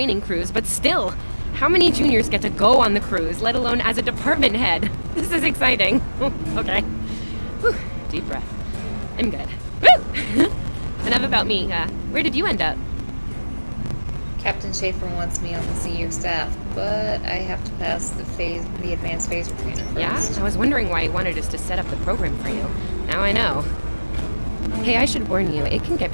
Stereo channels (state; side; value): inverted; both; correlation -1.00